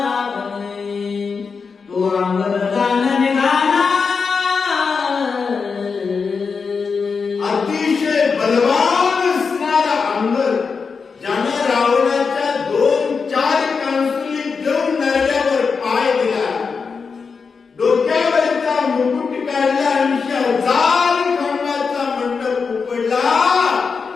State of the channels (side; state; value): right; quieter; 5.3 dB